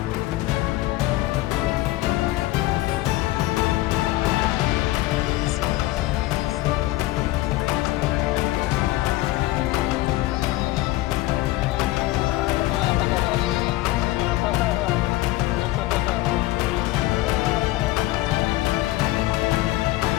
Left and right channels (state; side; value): quieter; right; 17.6 dB